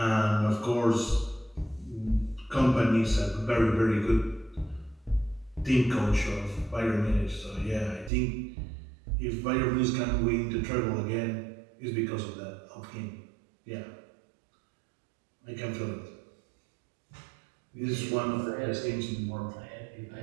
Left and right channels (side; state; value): left; drops out; at 8.1 s